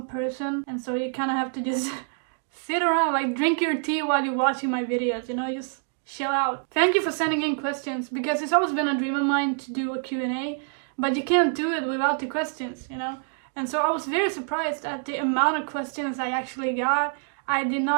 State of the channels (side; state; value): left; silent; 61 dB below the other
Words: person, and so you kind of have to just sit around, like drink your tea while you're watching my videos, you know, just chill out. Thank you for sending in questions, because it's always been a dream of mine to do a Q&A, but you can't do it without the questions, you know. And so I was very surprised at the amount of questions I actually got. I did